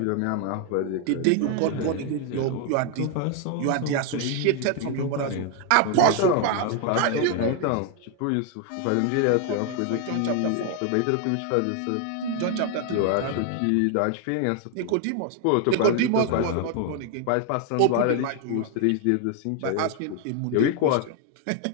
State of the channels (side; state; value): both; different; correlation 0.01